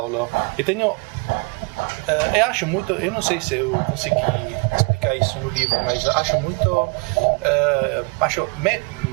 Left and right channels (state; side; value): quieter; left; 29.9 dB